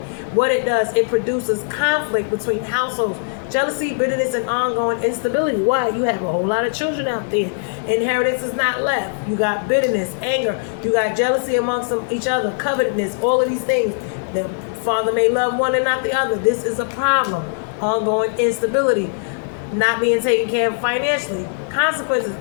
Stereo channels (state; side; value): silent; right; digital silence